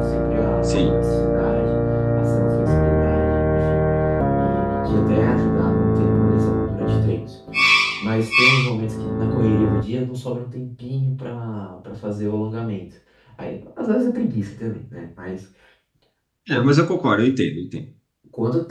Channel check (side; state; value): both; identical; correlation 1.00